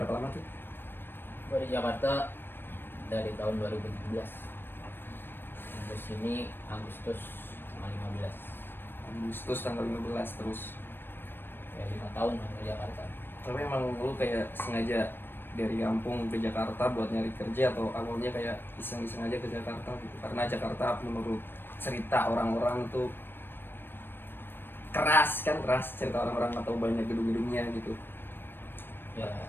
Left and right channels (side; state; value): right; late; 0.098 ms